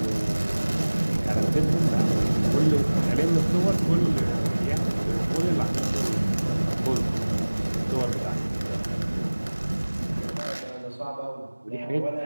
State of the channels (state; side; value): inverted; both; correlation -1.00